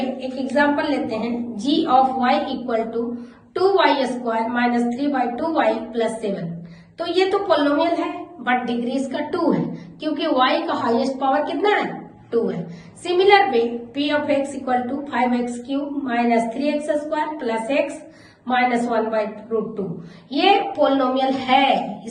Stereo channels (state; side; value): identical; both; correlation 1.00